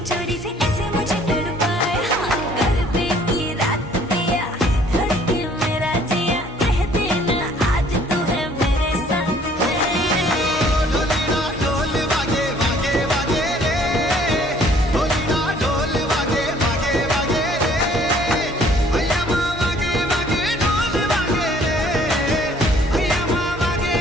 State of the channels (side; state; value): both; normal; correlation 0.58